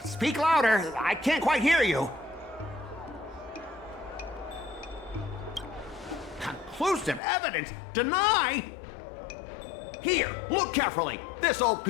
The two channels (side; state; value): right; drops out; at 7.2 s